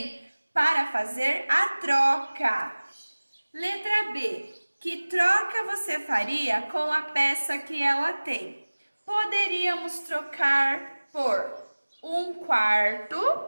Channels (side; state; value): both; inverted; correlation -1.00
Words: para fazer a troca. Letra B. Que troca você faria com a peça que ela tem? Poderíamos trocar por 1/4,